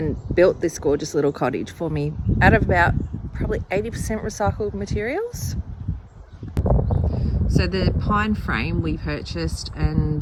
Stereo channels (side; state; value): both; identical; correlation 1.00